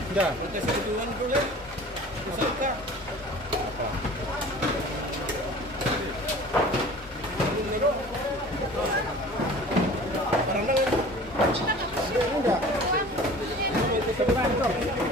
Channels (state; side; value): normal; both; correlation 0.43